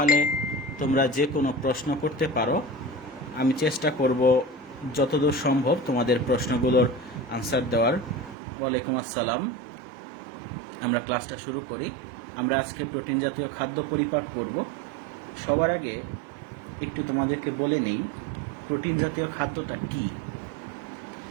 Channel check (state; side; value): drops out; left; at 8.3 s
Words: তোমরা যে কোনো প্রশ্ন করতে পারো। আমি চেষ্টা করব যতদূর সম্ভব তোমাদের প্রশ্নগুলোর আনসার দেওয়ার। ওয়ালাইকুম আসসালাম। আমরা ক্লাসটা শুরু করি। আমরা আজকে প্রোটিন জাতীয় খাদ্য পরিপাক করব। সবার আগে একটু তোমাদেরকে বলে নেই প্রোটিন জাতীয় খাদ্যটা কি।